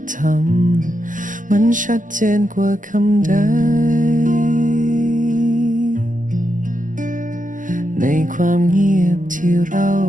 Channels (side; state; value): left; late; 0.38 ms